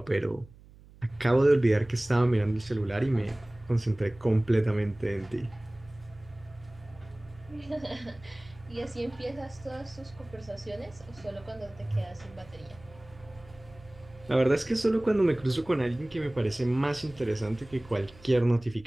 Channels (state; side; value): noise; right; hum, 22 dB below the sound